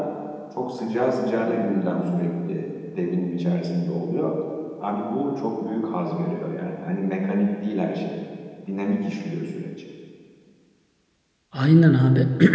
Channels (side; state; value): both; identical; correlation 1.00